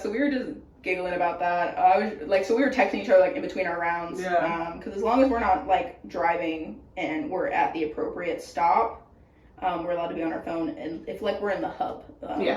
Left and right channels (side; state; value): both; identical; correlation 1.00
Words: we were just giggling about that. I was like, so we were texting each other like in between our rounds. Yeah. Because as long as we're not like driving and we're at the appropriate stop, we're allowed to be on our phone. And if like we're in the hub,